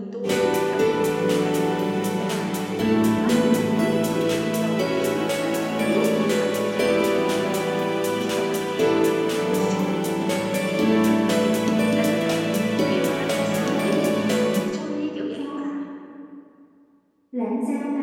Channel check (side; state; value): both; identical; correlation 1.00